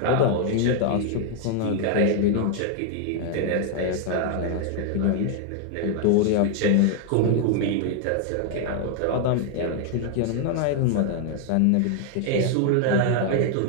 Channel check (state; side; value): different; both; correlation 0.00